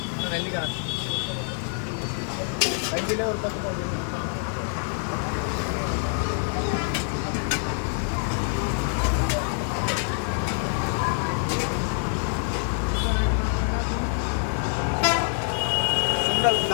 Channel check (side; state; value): right; silent; 61 dB below the other